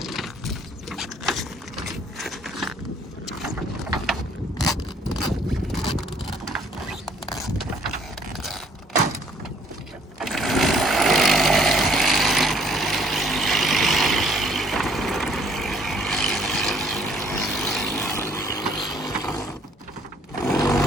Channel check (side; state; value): both; normal; correlation 0.61